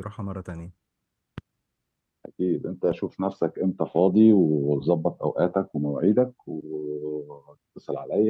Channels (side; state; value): both; identical; correlation 1.00